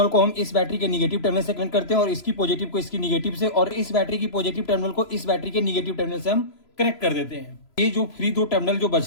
को हम इस बैटरी के निगेटिव टर्मिनल से कनेक्ट करते हैं और इसकी पॉजिटिव को इसकी निगेटिव से, और इस बैटरी की पॉजिटिव टर्मिनल को इस बैटरी के निगेटिव टर्मिनल से हम कनेक्ट कर देते हैं। ये जो फ्री 2 टर्मिनल जो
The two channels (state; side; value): late; right; 3.0 ms